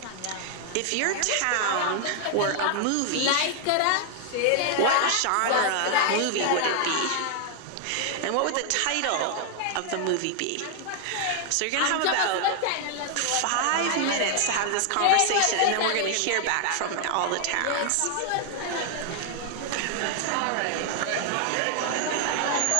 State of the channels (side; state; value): both; different; correlation 0.00